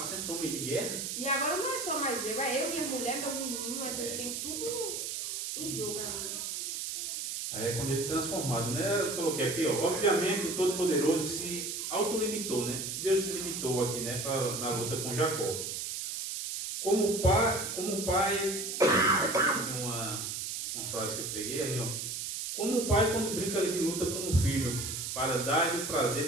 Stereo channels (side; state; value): right; noise; hiss, 4 dB below the sound